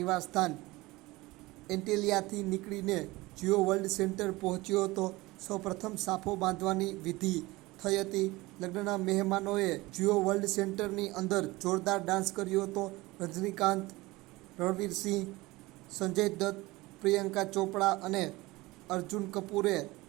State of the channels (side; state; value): left; quieter; 20.8 dB